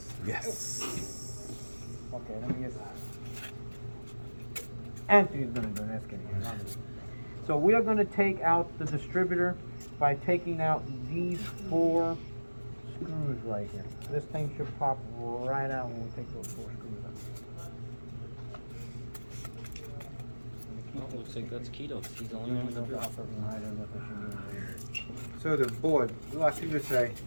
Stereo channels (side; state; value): both; inverted; correlation -1.00